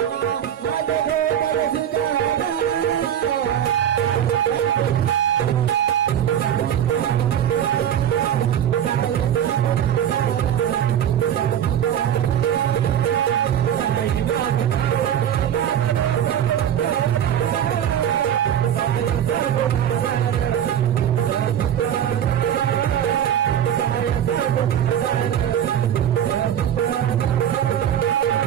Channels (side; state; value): left; quieter; 9.8 dB